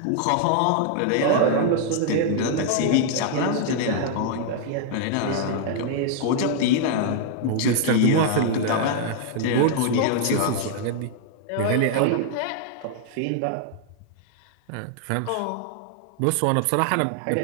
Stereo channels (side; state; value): both; different; correlation 0.00